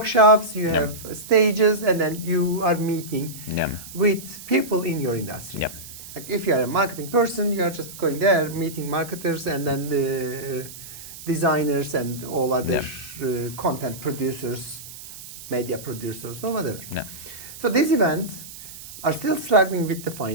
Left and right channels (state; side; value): noise; right; hiss, 14 dB below the sound